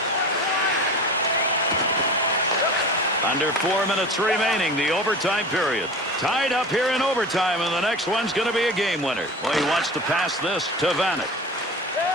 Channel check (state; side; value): normal; both; correlation 0.34